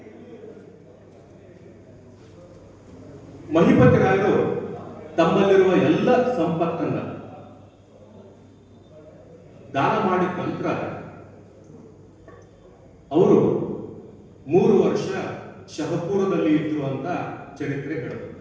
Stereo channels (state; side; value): identical; both; correlation 1.00